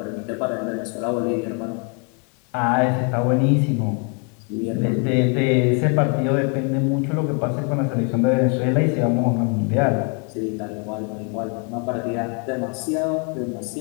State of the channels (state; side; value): quieter; right; 37.8 dB